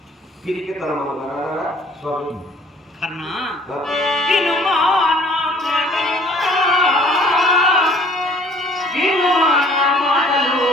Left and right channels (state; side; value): normal; both; correlation 0.55